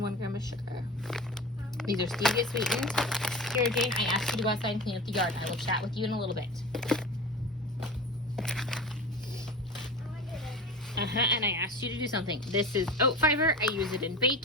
1 gram of sugar. These are stevia sweetened. Here, Jane, I asked you to go outside and clean up the yard. I will chat with you in a little bit. And I asked you to do something. This is oat fiber. I use it in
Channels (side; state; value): both; normal; correlation 0.33